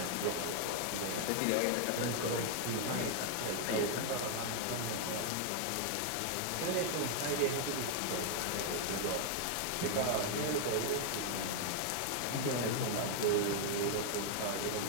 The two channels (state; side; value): different; both; correlation 0.00